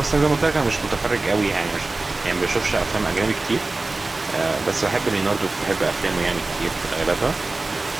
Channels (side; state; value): left; quieter; 3.3 dB